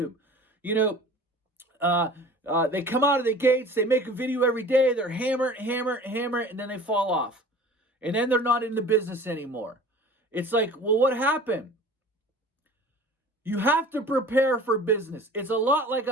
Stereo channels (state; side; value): normal; both; correlation 0.43